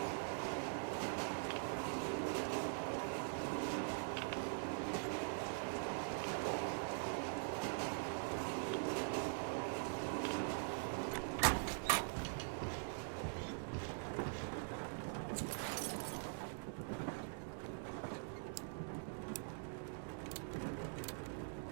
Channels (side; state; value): left; silent; digital silence